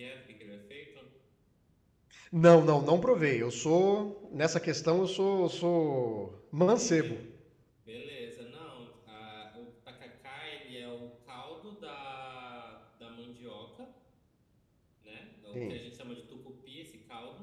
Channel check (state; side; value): identical; both; correlation 1.00